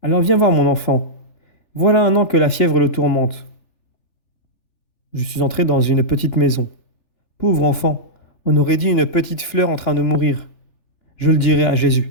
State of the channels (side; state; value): right; late; 3.4 ms